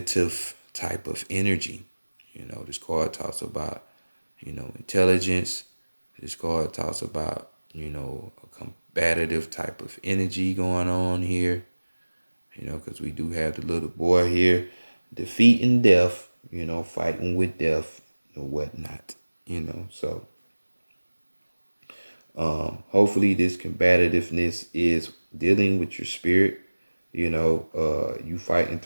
type of energy. This card talks about, intelligence. This card talks about, a combative type of energy going on here, because we do have the little boy here defeating death, fighting with death and whatnot, so hopefully this combativeness is dealing with your spirit, you fighting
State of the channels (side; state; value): both; inverted; correlation -1.00